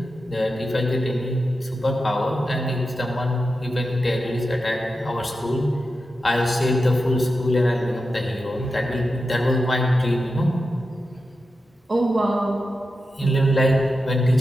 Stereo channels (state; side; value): normal; both; correlation 0.90